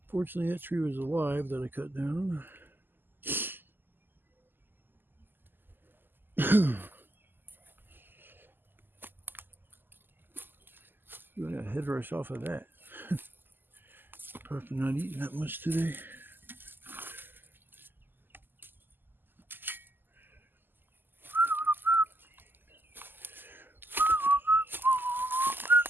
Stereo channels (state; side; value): late; left; 0.093 ms